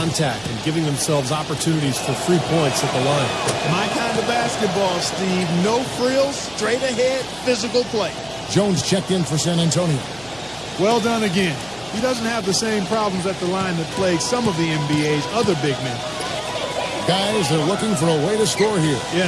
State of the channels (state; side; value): noise; right; hum, 22 dB below the sound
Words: and giving themselves opportunities for free points at the line? My kind of basketball, Steve. No frills, straight ahead, physical play. Jones checked in for San Antonio. Well done again. He doesn't have the same problems at the line that plague some of the NBA's other big men. Guys, they're looking for a way to score here.